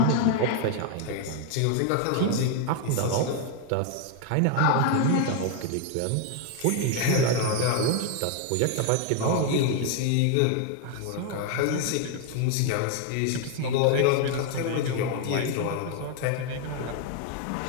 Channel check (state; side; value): different; both; correlation 0.00